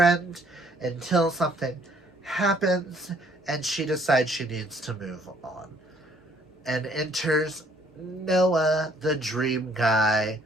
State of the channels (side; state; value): both; normal; correlation 0.63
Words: until something happens and she decides she needs to move on. And enters Noah, the dream guy,